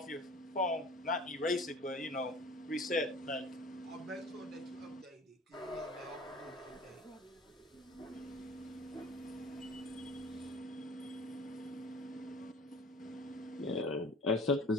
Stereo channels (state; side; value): normal; both; correlation 0.44